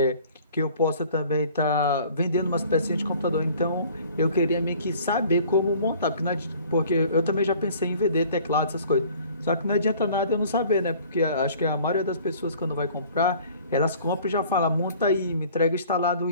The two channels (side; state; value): both; inverted; correlation -0.51